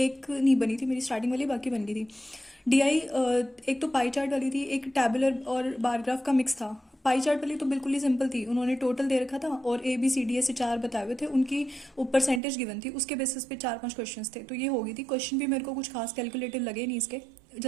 नहीं बनी थी मेरी स्टार्टिंग वाली, बाकी बन गई थी। DI एक तो पाई चार्ट वाली थी, एक टैबुलर और बार ग्राफ का मिक्स था। पाई चार्ट वाली तो बिल्कुल ही सिंपल थी, उन्होंने टोटल दे रखा था और ABCD ऐसे 4 बताए हुए थे, उनकी परसेंटेज गिवन थी, उसके बेसिस पे 4-5 क्वेश्चंस थे, तो ये हो गई थी। क्वेश्चन भी मेरे को कुछ खास कैलकुलेटिव लगे नहीं इसके,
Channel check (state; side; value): drops out; left; at 12.4 s